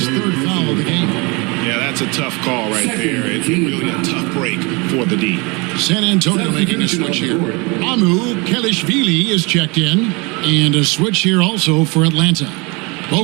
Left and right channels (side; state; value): left; quieter; 28.3 dB